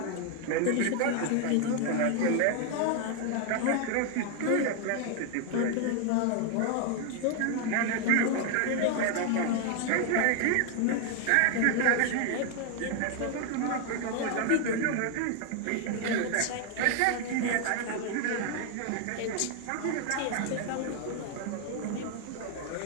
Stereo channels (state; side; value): different; both; correlation 0.01